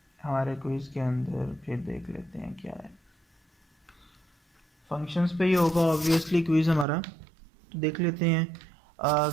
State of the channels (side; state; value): left; drops out; at 6.9 s